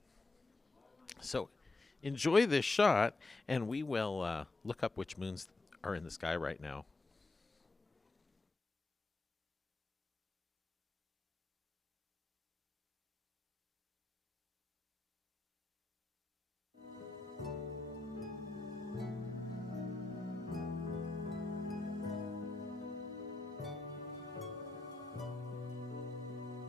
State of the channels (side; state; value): right; quieter; 3.3 dB